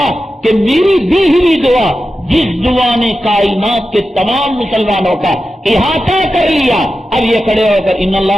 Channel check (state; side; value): normal; both; correlation 0.91